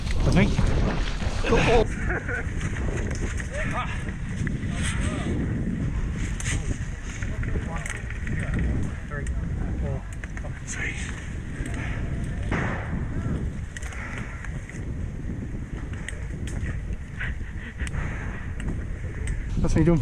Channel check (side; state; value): both; identical; correlation 1.00